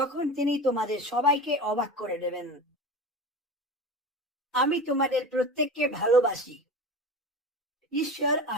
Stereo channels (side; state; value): both; normal; correlation 0.31